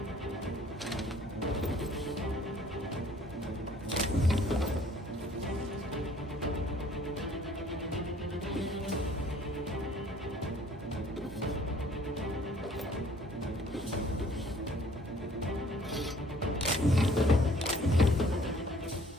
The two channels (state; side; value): normal; both; correlation 0.57